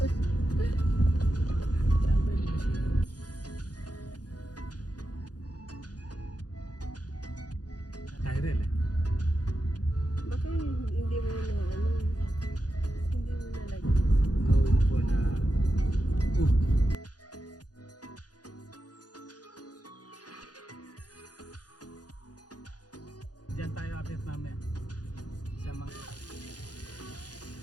Tyrell eh. Baka hindi mo na hindi mo na like. Going for the oof. Diyan tayo update namin sa mga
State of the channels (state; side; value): late; right; 0.69 ms